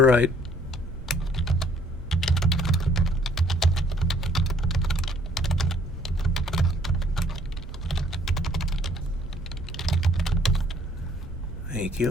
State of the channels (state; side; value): normal; both; correlation 0.61